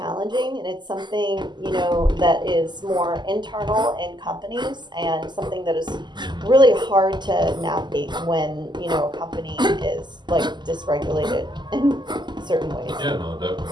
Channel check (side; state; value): left; late; 0.21 ms